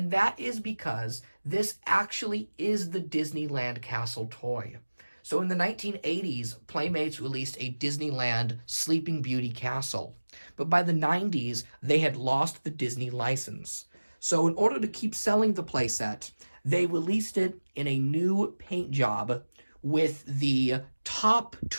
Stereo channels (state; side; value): inverted; both; correlation -1.00